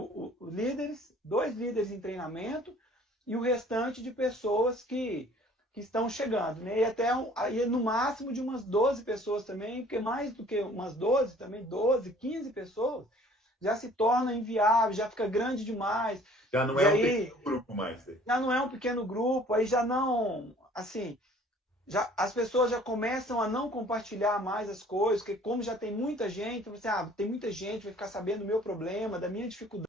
2 líderes em treinamento e o restante de pessoas que estão chegando, né? E até aí no máximo de umas 12 pessoas também, porque mais do que umas 12, também 12, 15 pessoas, já se torna inviável, já fica grande demais. Já não é um pequeno grupo mais. Já não é um pequeno grupo, aí já não, assim, as pessoas já começam a não compartilhar mais as coisas, porque como já tem muita gente, você, tem muita gente, vai ficar sabendo do meu problema, da minha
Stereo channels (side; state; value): both; normal; correlation 0.53